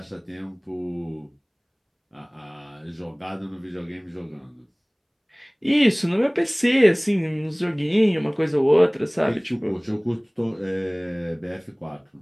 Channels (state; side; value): identical; both; correlation 1.00